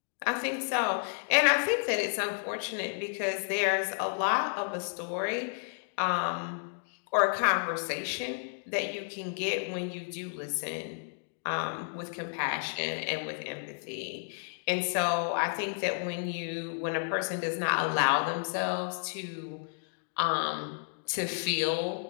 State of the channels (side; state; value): right; silent; digital silence